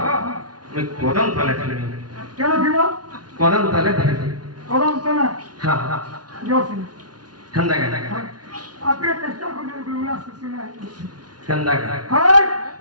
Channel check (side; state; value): left; late; 0.69 ms